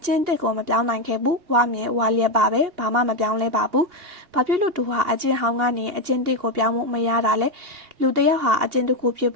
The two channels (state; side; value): late; left; 2.8 ms